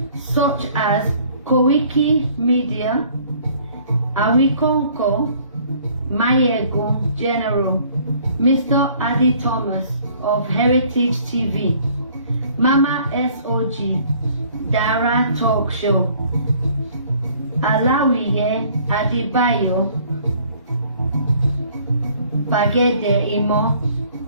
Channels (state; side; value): inverted; both; correlation -0.57